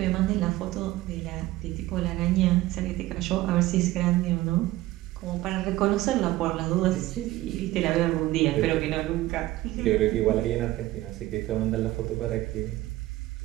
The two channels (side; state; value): left; quieter; 16.9 dB